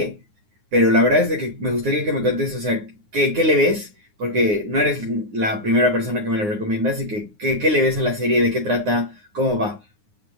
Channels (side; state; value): left; late; 9.6 ms